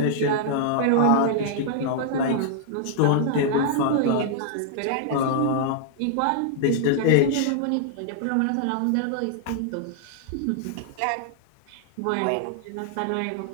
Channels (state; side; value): different; both; correlation -0.01